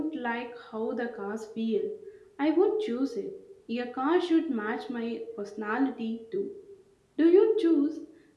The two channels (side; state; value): both; identical; correlation 1.00